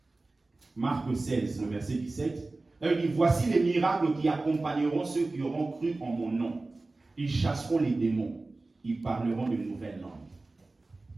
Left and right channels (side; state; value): left; quieter; 3.2 dB